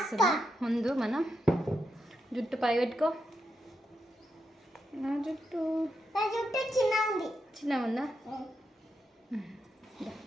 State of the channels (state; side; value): normal; both; correlation 0.84